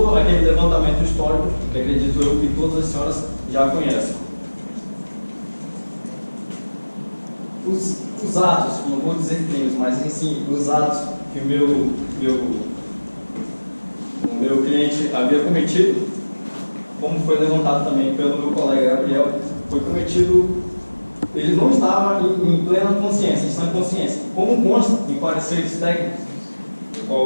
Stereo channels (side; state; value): both; inverted; correlation -1.00